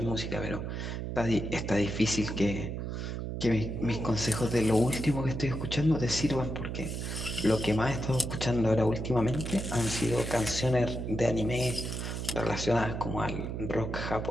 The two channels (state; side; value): noise; right; hum, 4 dB below the sound